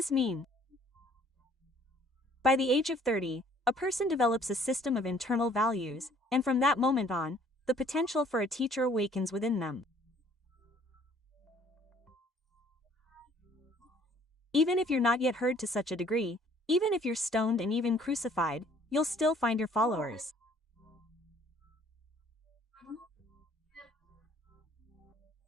mean? By the age of 30, a person develops a system of internal values, and from that moment on, the potential for a teacher awakens within them. Even if you're not yet heard to such a degree, even if you're stoned and even crucified, you'll still find your followers.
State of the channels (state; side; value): normal; both; correlation 0.58